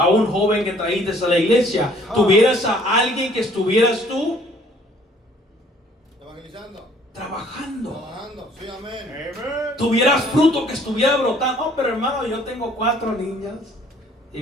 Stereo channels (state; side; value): normal; both; correlation 0.58